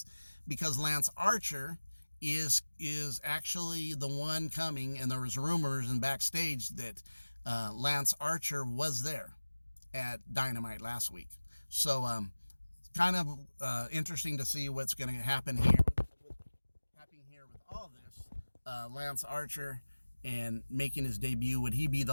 because Lance Archer is actually the one coming, and there was rumors and backstage that Lance Archer was there at Dynamite last week. So kind of interesting to see what's going to happen here with all this. Lance Archer and making his debut, would he be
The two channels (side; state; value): both; inverted; correlation -1.00